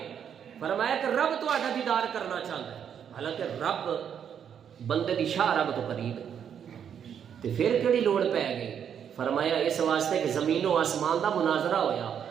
فرمایا کہ رب تہاڈا دیدار کرنا چاہتا ہے حالانکہ رب بندے دی شاہ رب تو قریب ہے تے پھر کیڑی لوڑ پے گئی فرمایا اس واسطے کہ زمین و آسمان دا مناظرہ ہویا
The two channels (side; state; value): left; quieter; 8.3 dB